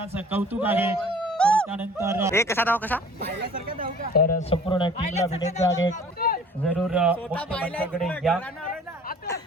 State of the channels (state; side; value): normal; both; correlation 0.49